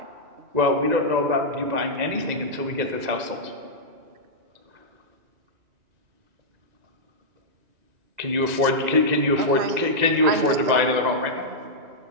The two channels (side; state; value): left; late; 2.0 ms